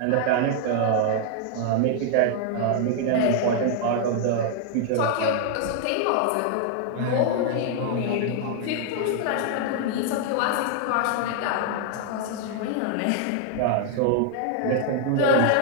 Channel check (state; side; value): different; both; correlation 0.00